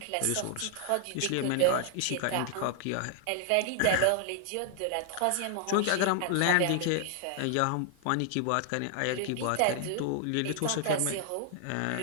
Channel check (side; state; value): both; different; correlation 0.00